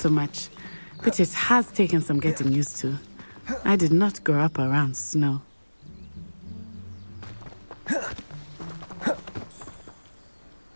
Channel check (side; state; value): both; inverted; correlation -1.00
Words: much, but it has taken some getting used to. I did not grow up around snow.